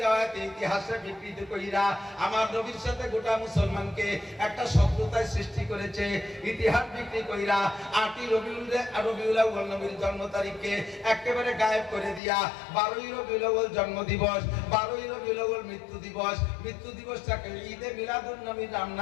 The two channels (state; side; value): drops out; right; at 12.2 s